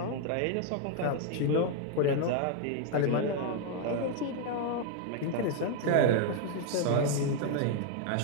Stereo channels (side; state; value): both; different; correlation 0.00